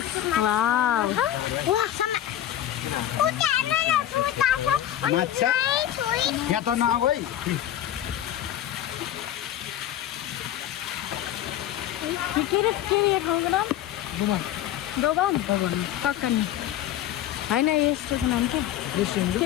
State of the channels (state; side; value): quieter; right; 11.9 dB